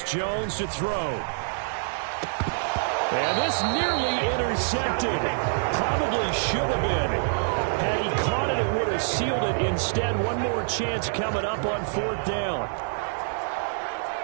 Jones to throw. And this nearly intercepted. Probably should have been. Had he caught it, it would have sealed it. Instead, one more chance coming up on 4th down.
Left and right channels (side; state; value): left; silent; digital silence